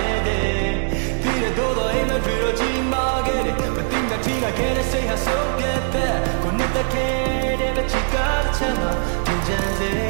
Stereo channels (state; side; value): silent; left; digital silence